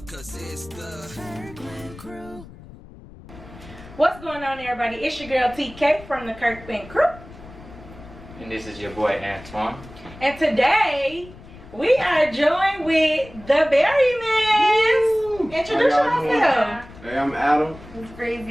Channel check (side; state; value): left; noise; rumble, 18 dB below the sound